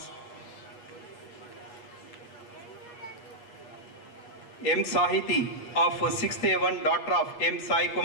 M. Sahiti of 6th A1, daughter of M. Sai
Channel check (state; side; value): late; right; 8.5 ms